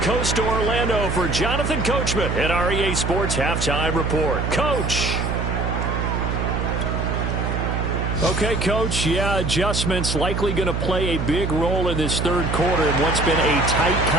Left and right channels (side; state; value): right; noise; hum, 1 dB below the sound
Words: to Orlando for Jonathan Coachman at our EA Sports Halftime Report. Coach. Okay, Coach. Yeah, adjustments likely going to play a big role in this third quarter in what's been a tight